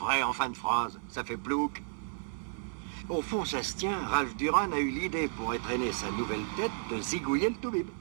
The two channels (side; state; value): left; silent; 56 dB below the other